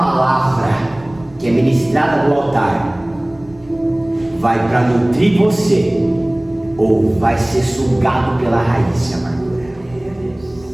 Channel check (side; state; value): right; noise; rumble, 24 dB below the sound